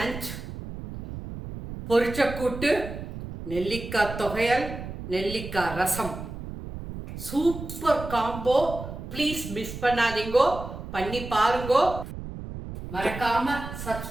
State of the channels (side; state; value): right; noise; rumble, 9 dB below the sound